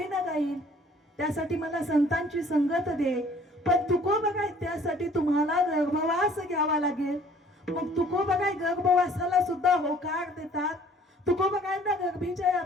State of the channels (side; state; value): both; normal; correlation 0.55